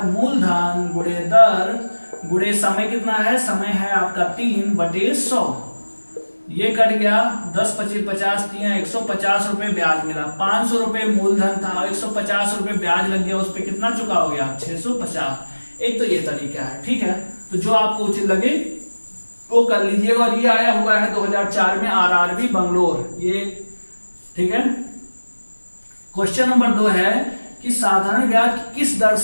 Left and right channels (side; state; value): both; inverted; correlation -1.00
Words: मूलधन गुणे दर गुणे समय। कितना है समय है आपका 3/100, ये कट गया 10 25 50 3 150 रुपए ब्याज मिला। 500 रुपए मूलधन था, 150 रुपए ब्याज लग गया, उस पर कितना चुकाओगे आप 650। एक तो ये तरीका है, ठीक है। तो जो आपको उचित लगे वो कर लीजिएगा। और ये आया हुआ है 2004 में आरआरबी बंगलोर, ये ठीक है। क्वेश्चन नंबर 2 है कि साधारण ब्याज किस दर